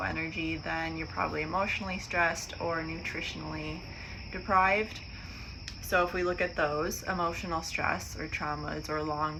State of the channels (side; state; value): both; identical; correlation 1.00